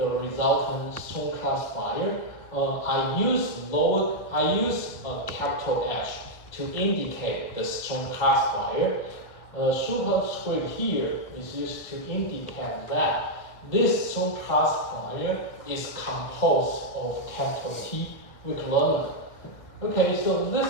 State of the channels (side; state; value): right; late; 1.5 ms